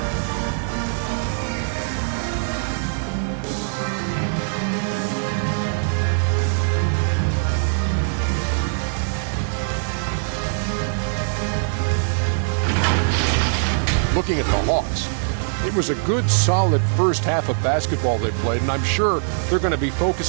Looking at the Hawks, it was a good, solid first half of basketball they played, and I'm sure they're going to be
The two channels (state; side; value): silent; left; digital silence